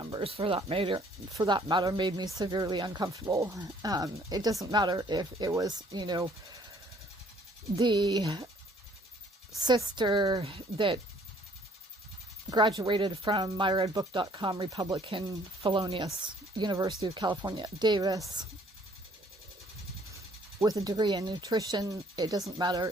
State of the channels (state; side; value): normal; both; correlation 0.60